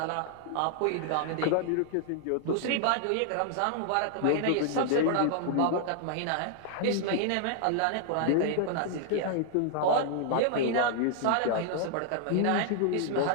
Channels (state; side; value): different; both; correlation -0.01